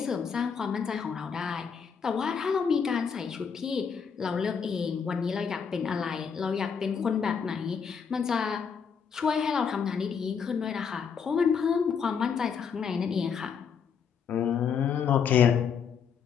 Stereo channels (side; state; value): right; quieter; 6.6 dB